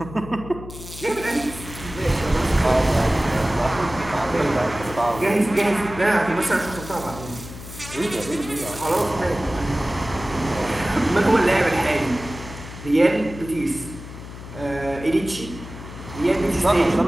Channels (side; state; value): left; noise; hum, 13 dB below the sound